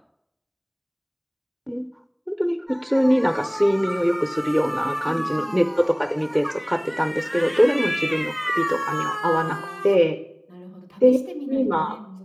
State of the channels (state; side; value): identical; both; correlation 1.00